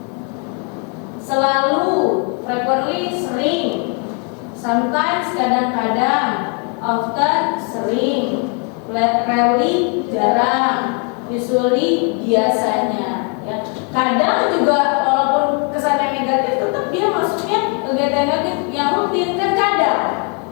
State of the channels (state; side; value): quieter; right; 35.7 dB